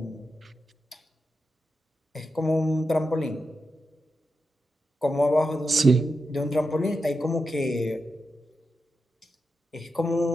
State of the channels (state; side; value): normal; both; correlation 0.88